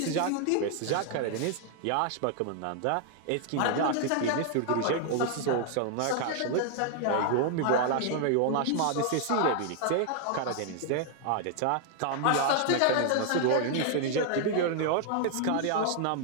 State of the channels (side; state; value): both; different; correlation 0.00